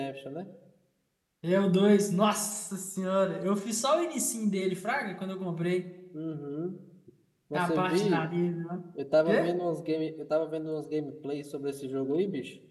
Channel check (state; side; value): identical; both; correlation 1.00